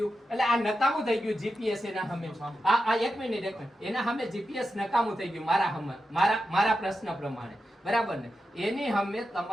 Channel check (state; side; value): normal; both; correlation 0.89